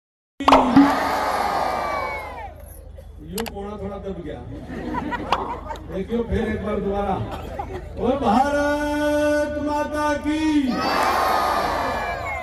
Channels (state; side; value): identical; both; correlation 1.00